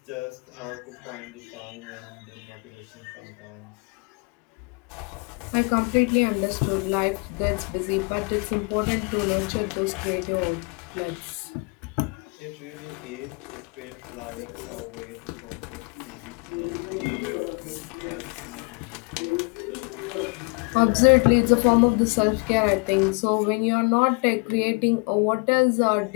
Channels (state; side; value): quieter; right; 32.8 dB